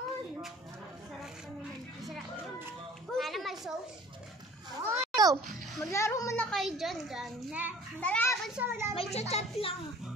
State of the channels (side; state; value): both; normal; correlation 0.48